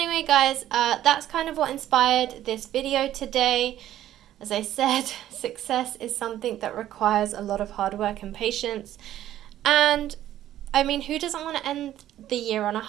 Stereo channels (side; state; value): left; quieter; 12.6 dB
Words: guys, that's kind of what inspired this video today. As I said, success is something that requires a lot of hard work and patience. And, I mean, who doesn't want to end the year on a